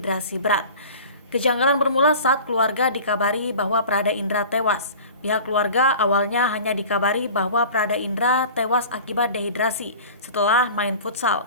berat. Kejanggalan bermula saat keluarga dikabari bahwa Prada Indra tewas. Pihak keluarga awalnya hanya dikabari bahwa Prada Indra tewas akibat dehidrasi setelah main futsal.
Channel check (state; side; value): inverted; both; correlation -0.40